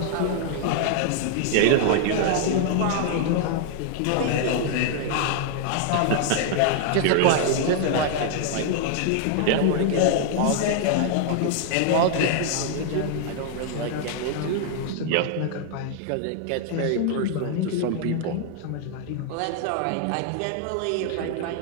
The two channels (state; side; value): different; both; correlation 0.00